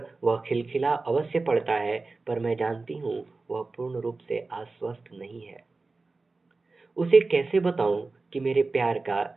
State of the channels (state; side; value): quieter; left; 3.7 dB